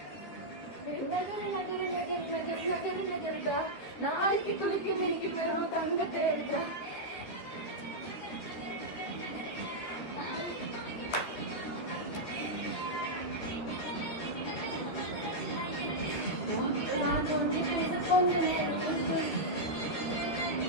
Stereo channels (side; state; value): right; late; 12 ms